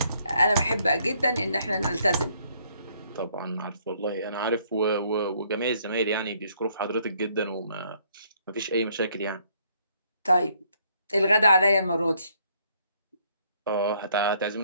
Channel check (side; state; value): both; inverted; correlation -0.67